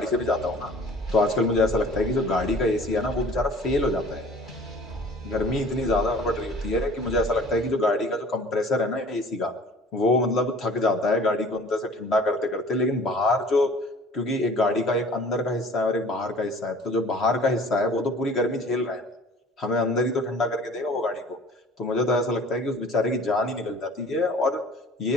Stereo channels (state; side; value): normal; both; correlation 0.48